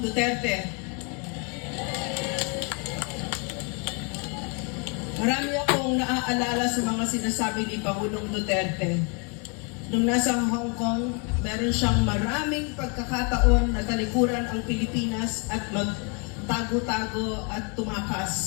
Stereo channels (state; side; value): quieter; right; 34.9 dB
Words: Marami akong naaalala sa mga sinasabi ni Pangulong Duterte. Nung nasa Hong Kong, meron siyang maraming pagkakataon na talikuran ang Pilipinas at magtago-tago at